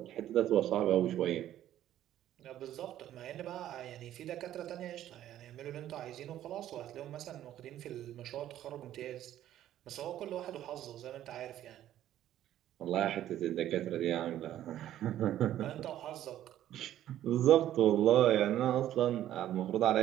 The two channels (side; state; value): left; quieter; 12.3 dB